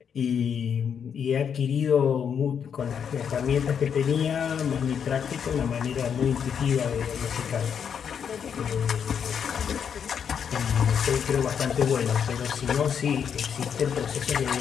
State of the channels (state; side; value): quieter; right; 7.5 dB